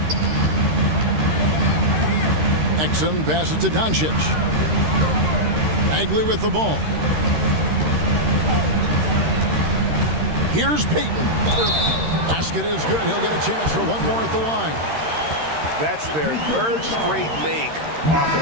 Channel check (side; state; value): left; late; 13 ms